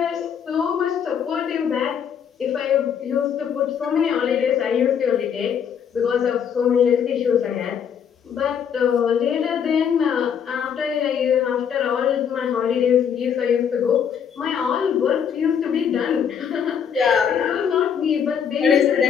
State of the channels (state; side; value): quieter; right; 7.8 dB